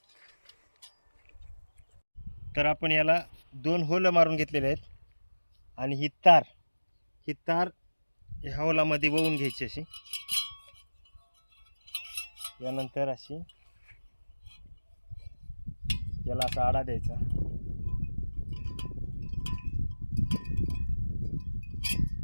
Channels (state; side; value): inverted; both; correlation -1.00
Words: तर आपण याला 2 होल मारून घेतलेले आहेत आणि ही तार ह्या होलामध्ये वळून घ्यायची अशी. यानंतर अशी याला असा आडा द्यायचा